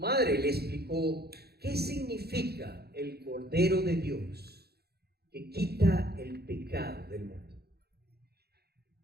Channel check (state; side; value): late; left; 0.46 ms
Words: le explicó qué significa el Cordero de Dios que quita el pecado del mundo.